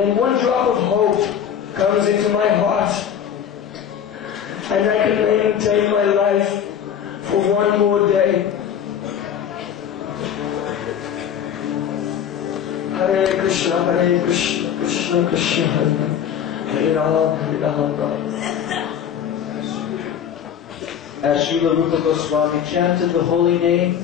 one drop of hope comes into my heart, and I can maintain my life for one more day. Hare Krishna, Krishna Krishna, Hare Ram. As Srila Rupa Goswami chanted the holy name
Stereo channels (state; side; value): quieter; right; 8.8 dB